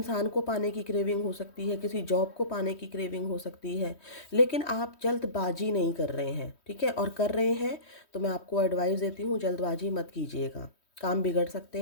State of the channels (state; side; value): late; right; 3.1 ms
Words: को पाने की क्रेविंग हो सकती है, किसी जॉब को पाने की क्रेविंग हो सकती है। लेकिन आप जल्दबाजी नहीं कर रहे हैं, ठीक है? और कर रहे हैं तो मैं आपको एडवाइस देती हूँ, जल्दबाजी मत कीजिएगा, काम बिगड़ सकते